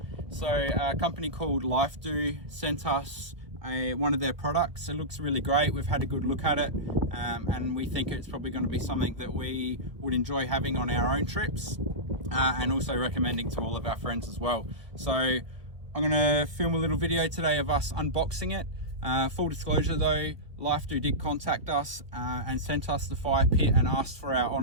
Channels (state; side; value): late; left; 1.4 ms